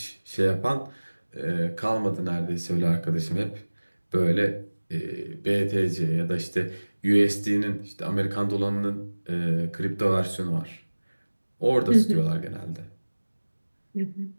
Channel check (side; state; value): both; inverted; correlation -1.00